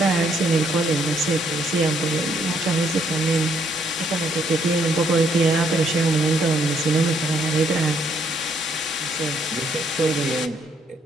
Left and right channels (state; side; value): normal; both; correlation 0.71